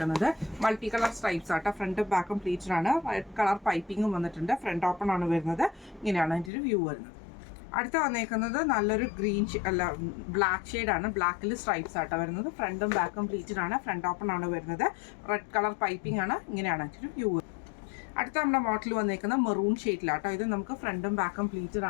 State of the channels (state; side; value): drops out; right; at 6.5 s